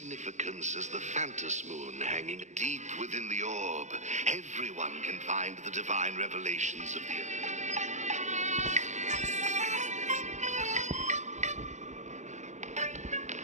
as the Phantos Moon hanging deep within the orb. Everyone can find the divine revelations of the earth.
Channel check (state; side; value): late; left; 0.34 ms